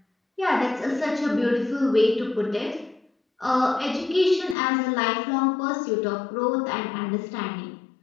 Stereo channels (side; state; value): right; drops out; at 4.5 s